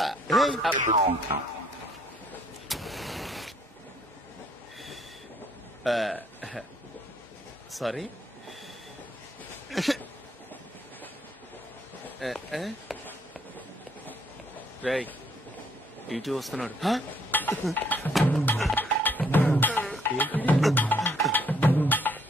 సారీ. రేయ్, ఇటు వస్తున్నాడు.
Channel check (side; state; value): both; normal; correlation 0.66